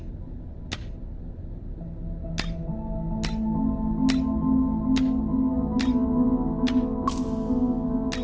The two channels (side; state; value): both; identical; correlation 1.00